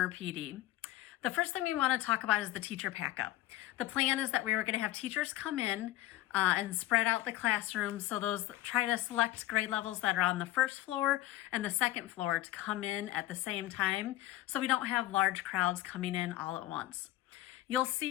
PD. The first thing we want to talk about is the teacher pack-up. The plan is that we were going to have teachers come in and spread out the classrooms. So try to select grade levels that are on the first floor and the second floor to come in at the same time, so we don't have large crowds coming in all at once. You'll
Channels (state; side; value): quieter; right; 15.3 dB